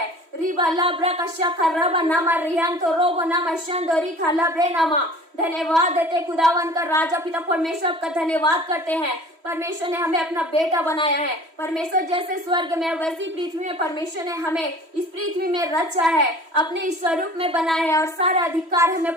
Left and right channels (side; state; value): left; late; 3.1 ms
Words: रिबा लाब्रा का शखा रबा नामा रिहान तो रोबो नामा शंदो रिखा लाब्रे नामा। धन्यवाद देते खुदावन का राजा पिता परमेश्वर का धन्यवाद करते हैं। परमेश्वर ने हमें अपना बेटा बनाया है। परमेश्वर जैसे स्वर्ग में वैसी पृथ्वी में परमेश्वर ने हमें इस पृथ्वी में रचा है, अपने स्वरूप में बनाया है, और सारा अधिकार